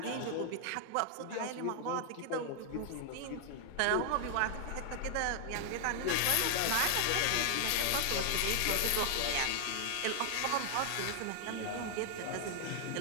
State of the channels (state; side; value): different; both; correlation 0.00